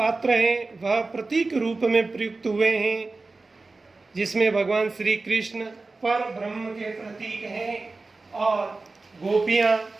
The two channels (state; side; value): quieter; left; 3.6 dB